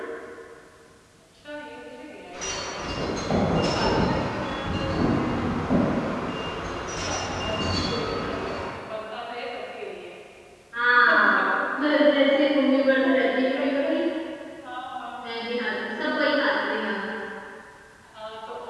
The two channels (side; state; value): both; identical; correlation 1.00